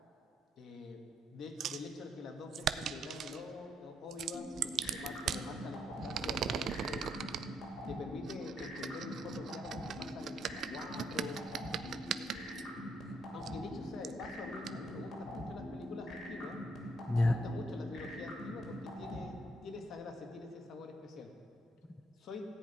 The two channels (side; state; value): both; normal; correlation 0.73